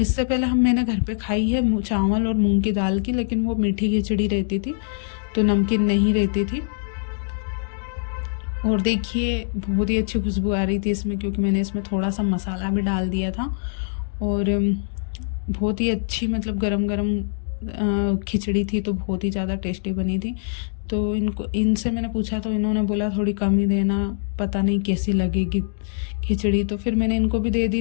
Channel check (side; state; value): right; silent; digital silence